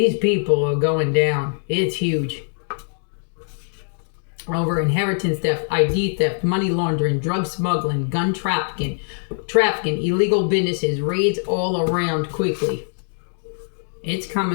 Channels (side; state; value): right; silent; digital silence